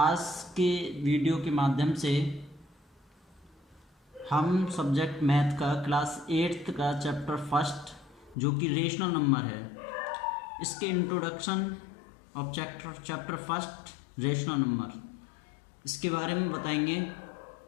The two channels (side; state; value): right; drops out; at 8.3 s